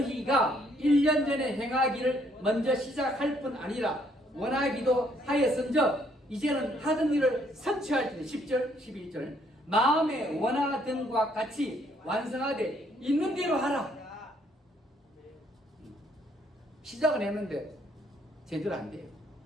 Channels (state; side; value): normal; both; correlation 0.67